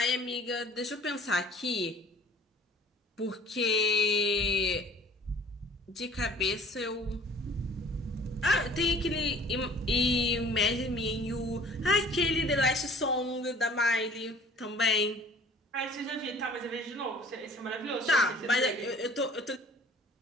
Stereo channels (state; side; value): normal; both; correlation 0.51